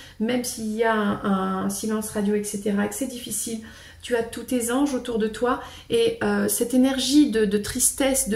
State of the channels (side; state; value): both; identical; correlation 1.00